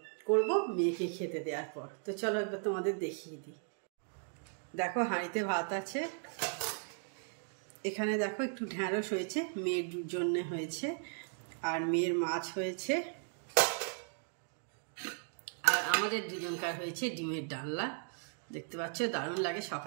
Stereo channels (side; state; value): left; silent; 53 dB below the other